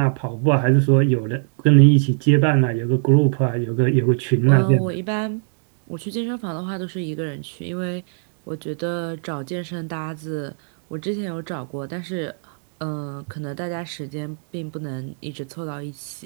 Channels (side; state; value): left; silent; 65 dB below the other